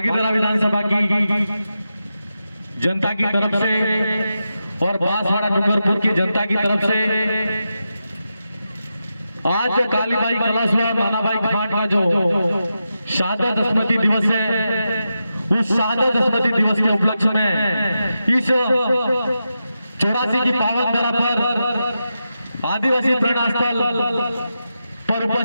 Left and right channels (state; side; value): inverted; both; correlation -0.89